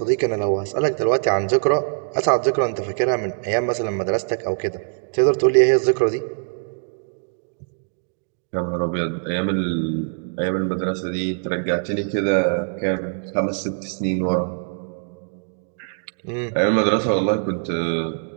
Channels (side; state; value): left; silent; digital silence